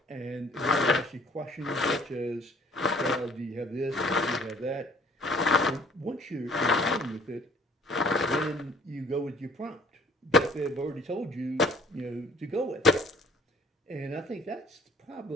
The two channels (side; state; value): both; normal; correlation 0.56